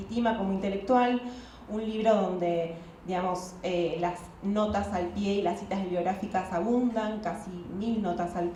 como intelectual, un libro donde, digamos, las notas al pie y las citas bibliográficas abundan, casi 1000 notas al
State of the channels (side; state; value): both; identical; correlation 1.00